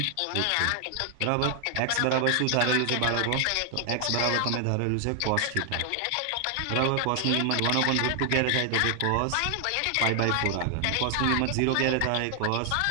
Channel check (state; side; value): different; both; correlation 0.00